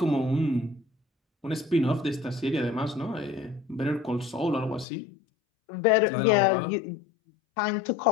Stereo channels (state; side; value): drops out; right; at 4.9 s